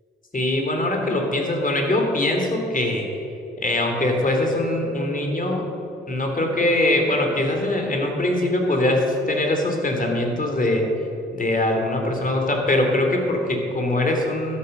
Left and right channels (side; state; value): both; normal; correlation 0.53